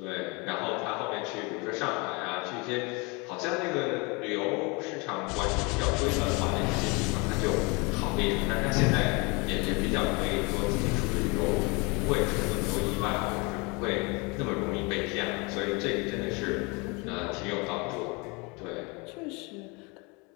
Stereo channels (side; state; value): right; quieter; 28.9 dB